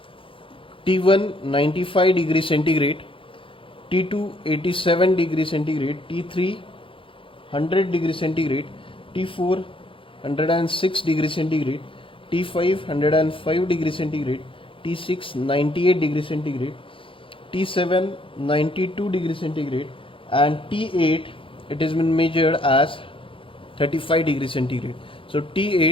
T1 95 degrees centigrade, T2 87 degrees centigrade, T3 100 degrees centigrade, T4 106 degrees centigrade, T5 105 degrees centigrade, T6 98 degrees centigrade, T7 92 degrees centigrade and T8 it has been measured as 35 degrees centigrade. So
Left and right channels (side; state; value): right; late; 0.25 ms